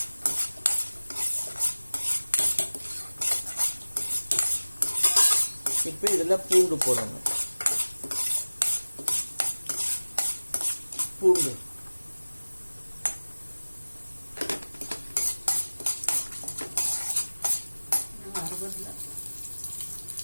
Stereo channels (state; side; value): inverted; both; correlation -1.00